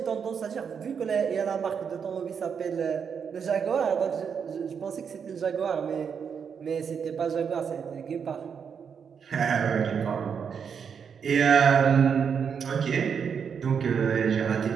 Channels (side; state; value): left; quieter; 6.8 dB